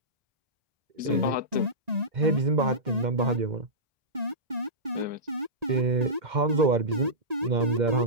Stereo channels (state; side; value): late; left; 1.9 ms